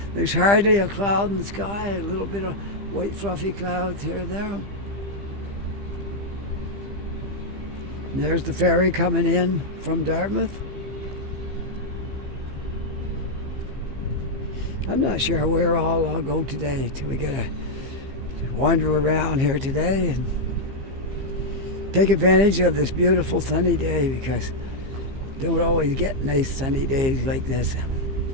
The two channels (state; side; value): late; left; 15 ms